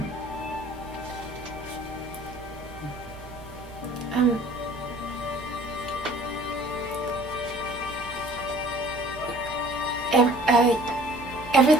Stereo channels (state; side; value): noise; right; hum, 17 dB below the sound